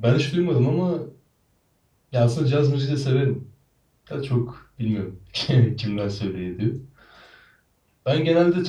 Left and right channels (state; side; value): identical; both; correlation 1.00